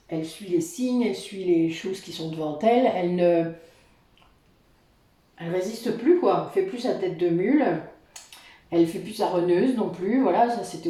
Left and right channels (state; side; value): identical; both; correlation 1.00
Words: elle suit les signes, elle suit les choses qui sont devant elle, elle résiste plus, quoi, elle fait plus sa tête de mule, elle fait plus sa reneuse non plus, voilà, ça c'était